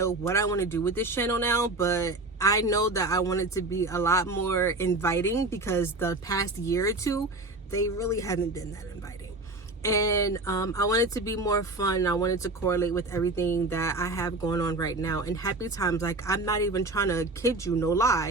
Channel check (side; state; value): left; quieter; 3.0 dB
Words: what I want to do with this channel now, but I know that I want it to be a lot more inviting, because the past year or two, they really haven't been that inviting. And I want it to be more fun. I want it to correlate with everything that I have going on right now. And happy times, like, I'm not even trying to kid you, no